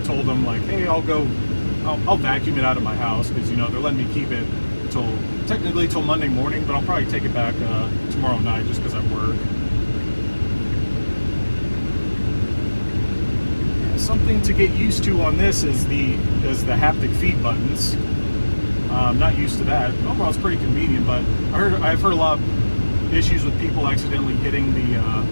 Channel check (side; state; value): both; inverted; correlation -1.00